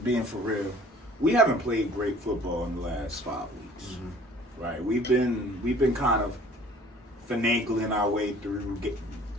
for real, we haven't played great football in the last 5 weeks. Mm-hmm. Right? We've been kind of finagling our way through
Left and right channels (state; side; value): normal; both; correlation 0.51